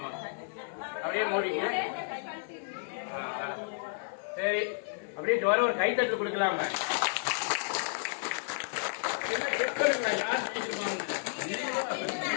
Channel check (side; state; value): right; silent; digital silence